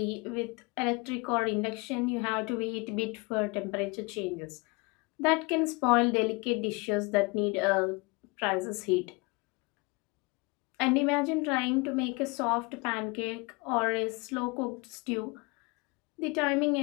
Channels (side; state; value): right; quieter; 27.4 dB